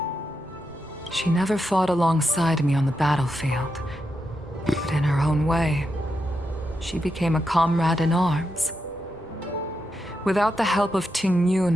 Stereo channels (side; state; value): both; normal; correlation 0.86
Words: She never fought alongside me on the battlefield, but in her own way, she became a comrade in arms. Without the help of Ting